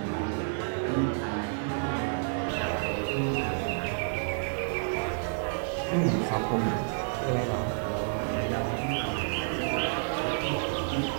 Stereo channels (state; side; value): silent; left; digital silence